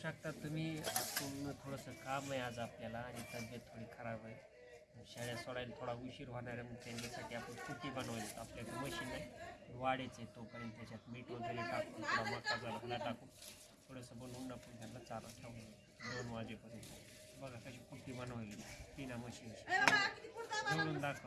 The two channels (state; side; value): identical; both; correlation 1.00